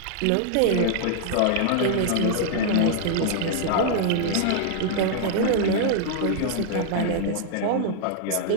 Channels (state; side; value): different; both; correlation 0.00